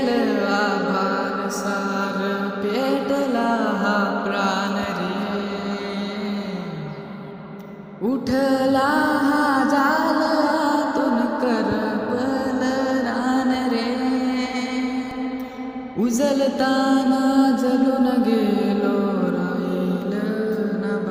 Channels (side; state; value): both; identical; correlation 1.00